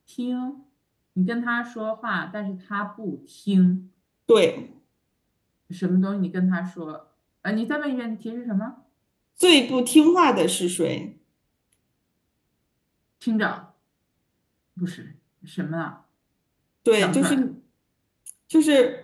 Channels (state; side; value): identical; both; correlation 1.00